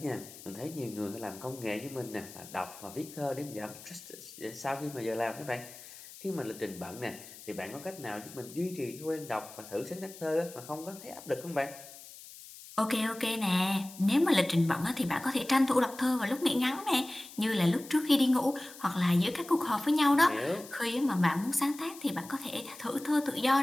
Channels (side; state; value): left; noise; hiss, 17 dB below the sound